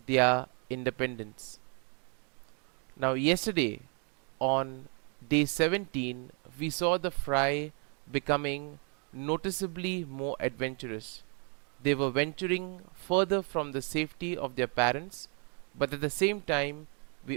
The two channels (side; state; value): left; quieter; 39.1 dB